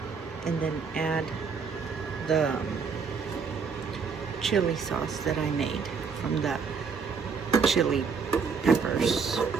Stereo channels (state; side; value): quieter; left; 5.6 dB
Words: and then add the chili sauce that I made from the chili peppers.